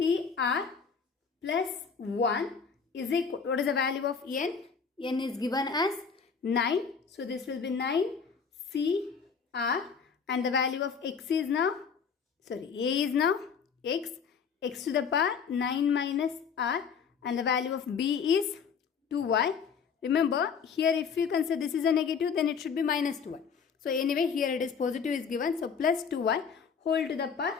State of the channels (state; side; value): quieter; right; 6.2 dB